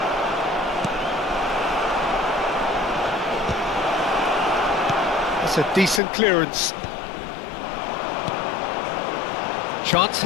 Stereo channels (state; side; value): drops out; right; at 6.0 s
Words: That's a decent clearance. Chance